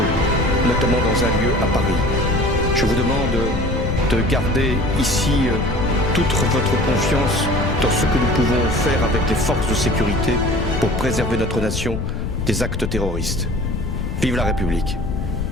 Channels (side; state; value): left; noise; rumble, 4 dB below the sound